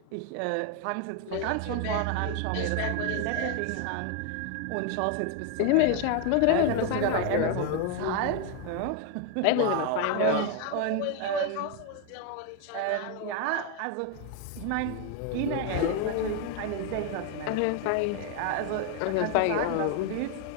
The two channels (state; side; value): different; both; correlation 0.01